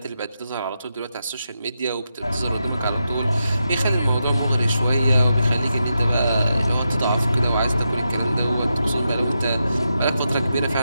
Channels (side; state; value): both; inverted; correlation -0.86